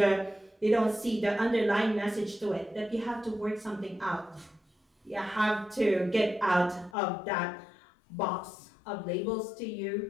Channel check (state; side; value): drops out; right; at 7.0 s